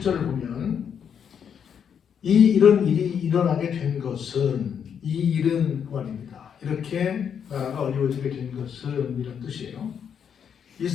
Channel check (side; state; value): right; quieter; 7.8 dB